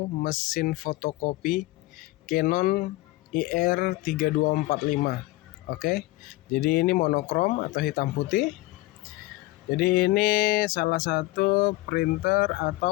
mesin fotokopi Canon IR3245. Oke. Jadi ini monokrom atau hitam putih. Jadi ini salah satu printer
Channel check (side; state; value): right; quieter; 19.7 dB